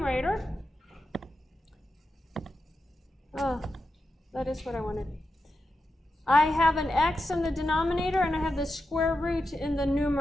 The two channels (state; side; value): normal; both; correlation 0.89